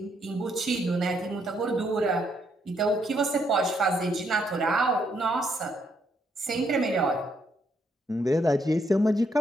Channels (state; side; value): normal; both; correlation 0.74